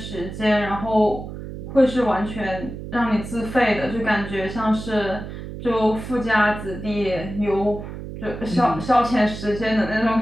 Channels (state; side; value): noise; right; hum, 10 dB below the sound